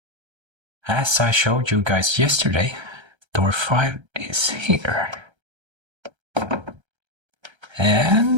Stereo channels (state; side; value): late; left; 1.3 ms